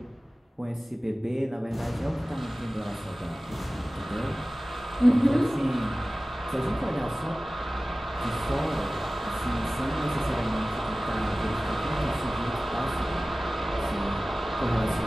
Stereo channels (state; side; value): normal; both; correlation 0.97